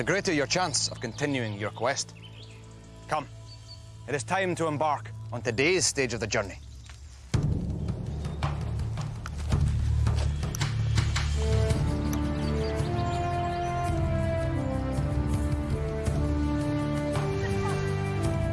greater your chance of continuing your quest. Come, it is time to embark on today's stage of the journey.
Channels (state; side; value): identical; both; correlation 1.00